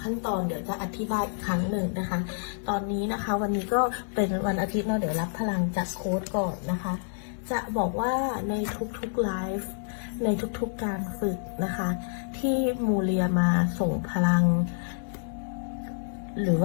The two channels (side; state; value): right; silent; digital silence